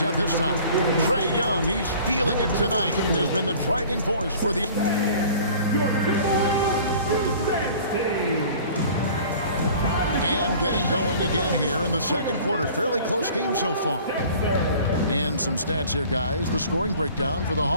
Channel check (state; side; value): inverted; both; correlation -0.47